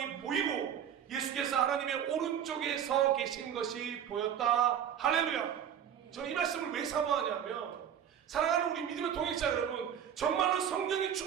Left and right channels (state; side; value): quieter; left; 9.1 dB